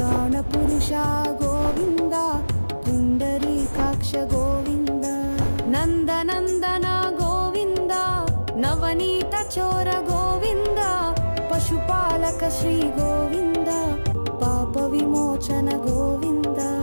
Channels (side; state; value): both; inverted; correlation -1.00